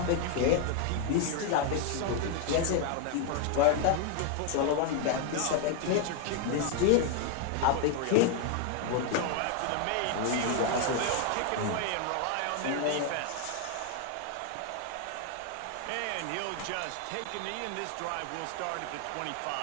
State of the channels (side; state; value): both; different; correlation 0.00